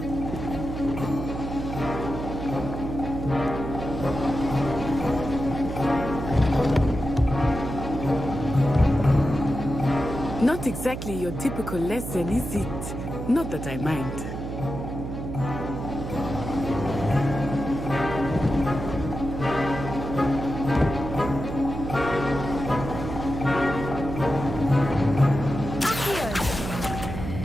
Not exactly your typical lesson, is it? Not that I mind.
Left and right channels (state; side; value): noise; right; hum, 6 dB below the sound